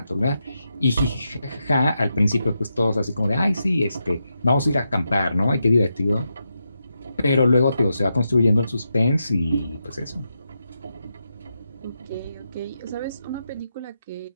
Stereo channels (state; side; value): inverted; both; correlation -0.86